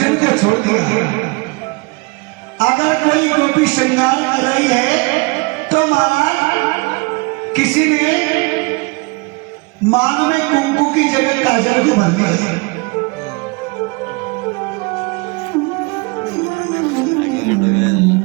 को छोड़ दिया। अगर कोई गोपी श्रृंगार कर रही है तो महाराज किसी ने मांग में कुंकू की जगह काजल को भर दिया।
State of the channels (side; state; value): left; quieter; 28.1 dB